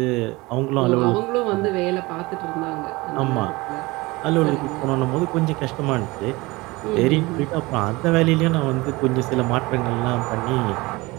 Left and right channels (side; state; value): left; quieter; 22.4 dB